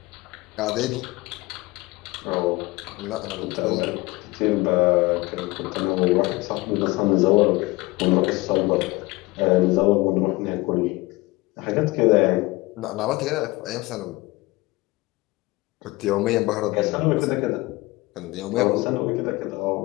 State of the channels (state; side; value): quieter; right; 21.6 dB